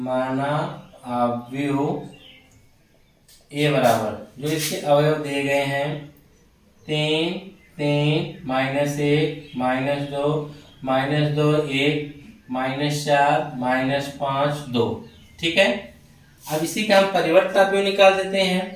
आव्यूह ए बराबर, जो इसके अवयव दिए गए हैं 3 3 -1 -2 -2 1 -4 -5 2। ठीक है, अब इसी का हम परिवर्त आव्यूह निकाल देते हैं।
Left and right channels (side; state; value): both; identical; correlation 1.00